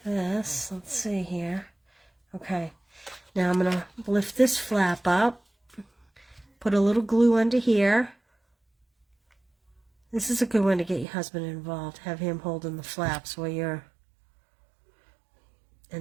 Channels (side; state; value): left; drops out; at 11.1 s